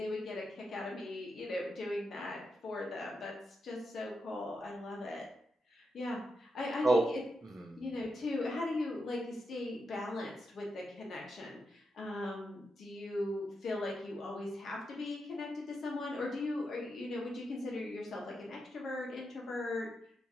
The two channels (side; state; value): both; normal; correlation 0.85